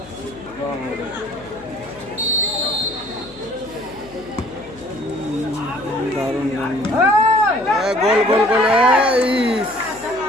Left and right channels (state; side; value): noise; left; hum, 23 dB below the sound